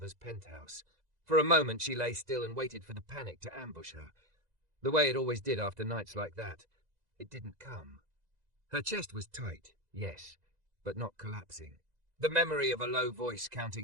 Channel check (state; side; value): late; left; 2.0 ms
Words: penthouse. For a moment she lay still and waited for the panic to ambush her. The way it always did after nights like that. It didn't come. Her chest was tight, yes, but not collapsing. The memory of a low voice